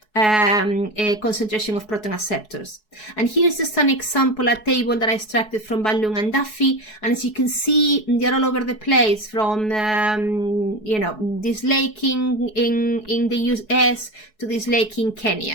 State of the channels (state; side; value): late; right; 4.7 ms